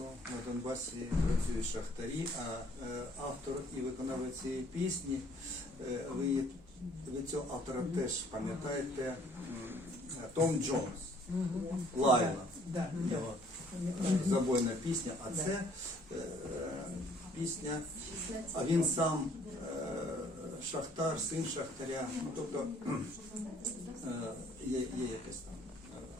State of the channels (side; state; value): both; normal; correlation 0.60